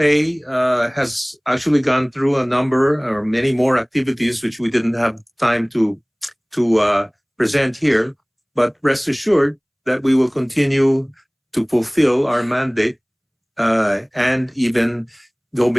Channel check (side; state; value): both; identical; correlation 1.00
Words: has actually gone through a number or many more activities which we didn't have time to present here, but rest assured that we will continue to fulfill our mandate and even go